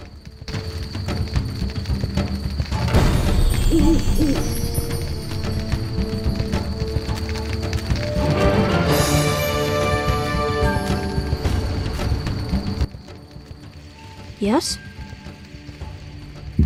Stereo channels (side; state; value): both; identical; correlation 1.00